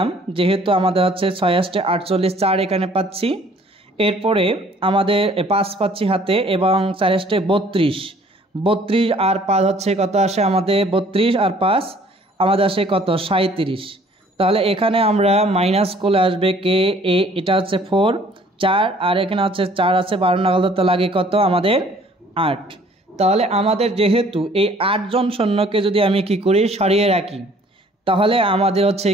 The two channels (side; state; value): both; normal; correlation 0.57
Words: যেহেতু আমাদের 6 আসতে 48, 4 এখানে পাচ্ছি। এরপরে আমাদের 5 পাচ্ছি হাতে এবং 4 আসতে 32 আর 5 কত আসে আমাদের, 32 আর 5 আমাদের আসে কত, 37। তাহলে এখানে আমরা মাইনাস করলে আসবে কে, এটা 4, 4 আর এখানে 4 আছে, 12 নাগাল ধরতে লাগে কত আমাদের 8। তাহলে আমাদের যেহেতু এই 8 জন সৈন্যকে যদি আমি কি করি, সরিয়ে রাখি, তাহলে আমাদের